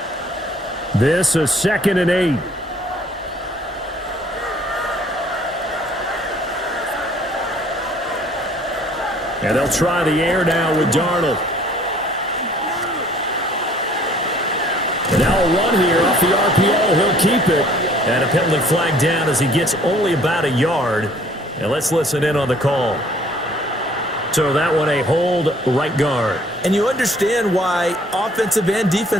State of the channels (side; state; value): both; normal; correlation 0.57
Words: This is 2nd and 8. And they'll try the air now with Darnold. Now a run here off the RPO. He'll keep it. And a penalty flag down as he gets only about a yard. And let's listen in on the call. So that one a hold, right guard. And you understand why offensive and